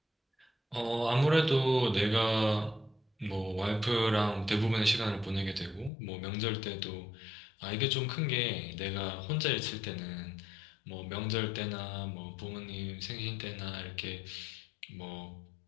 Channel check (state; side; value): drops out; right; at 5.9 s